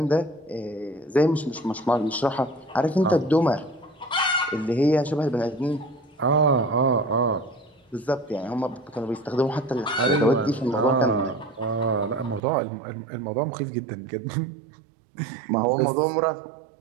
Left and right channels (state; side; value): drops out; left; at 12.4 s